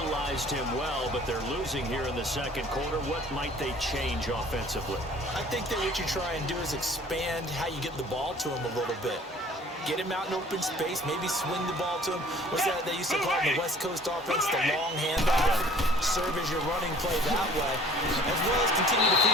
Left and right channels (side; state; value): both; normal; correlation 0.51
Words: him well, but they're losing here in the second quarter. What might they change offensively? I think that what you try and do is expand how you get the ball to him a little bit. Get him out in open space, maybe swing the ball to him. What's that they used to call it in the West Coast offense, the long handoff. Serve as your running play that way, as well as continue to feed